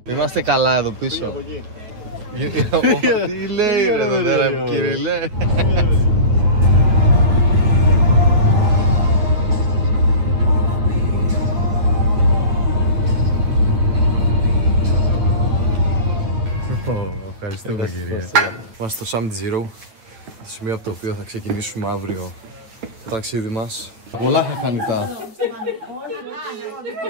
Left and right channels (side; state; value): left; late; 9.3 ms